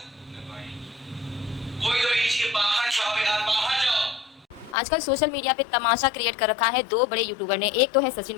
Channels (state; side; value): drops out; right; at 4.8 s